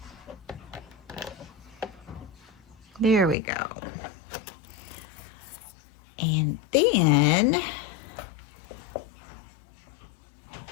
There we go. And then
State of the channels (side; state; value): right; drops out; at 3.4 s